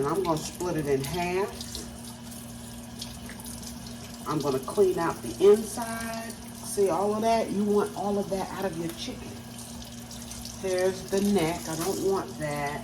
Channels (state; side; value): identical; both; correlation 1.00